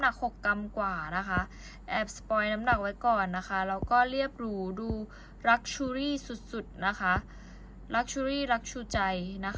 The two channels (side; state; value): both; identical; correlation 1.00